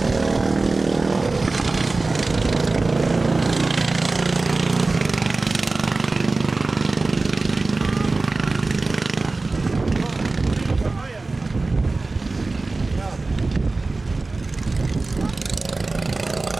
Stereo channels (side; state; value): left; quieter; 3.4 dB